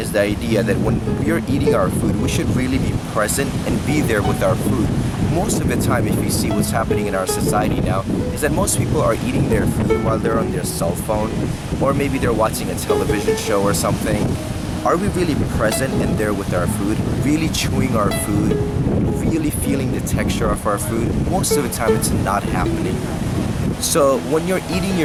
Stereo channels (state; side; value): identical; both; correlation 1.00